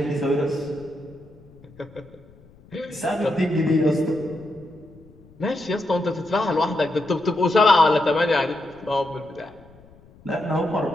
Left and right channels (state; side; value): noise; left; rumble, 25 dB below the sound